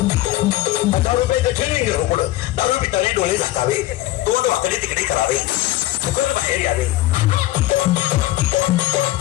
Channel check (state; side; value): quieter; right; 16.1 dB